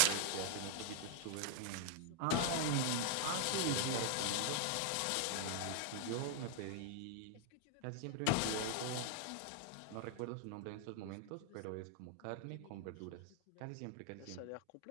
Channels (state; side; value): different; both; correlation -0.01